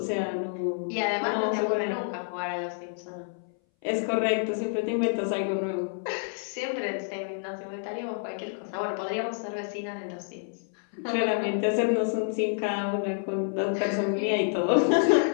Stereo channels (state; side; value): silent; right; 59 dB below the other